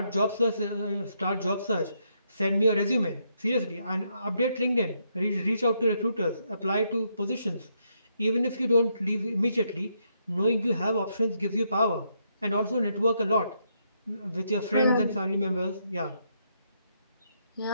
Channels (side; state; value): both; inverted; correlation -0.77